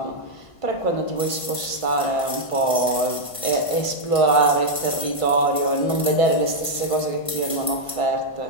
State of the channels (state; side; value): late; right; 1.5 ms